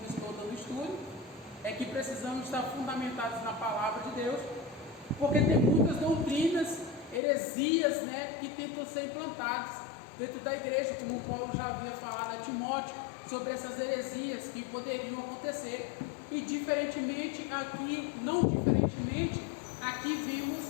estou dando estudo, é que precisamos estar fundamentados na palavra de Deus, porque tem muitas doutrinas, heresias, que tentam ser implantadas dentro da igreja, como Paulo já havia falado a Timóteo, sobre essas heresias que poderiam acontecer. E não diferentemente, aqui vimos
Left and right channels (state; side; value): drops out; right; at 7.2 s